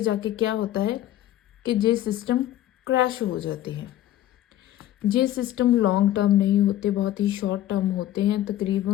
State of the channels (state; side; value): quieter; right; 13.2 dB